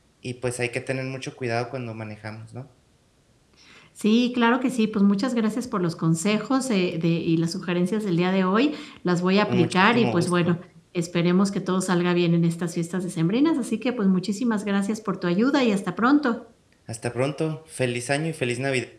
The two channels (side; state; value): both; identical; correlation 1.00